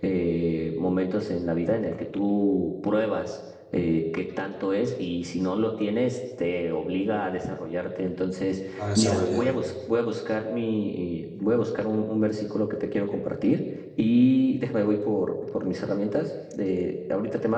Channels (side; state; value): both; identical; correlation 1.00